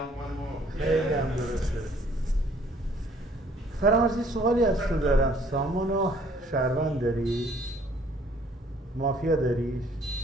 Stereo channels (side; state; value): both; normal; correlation 0.60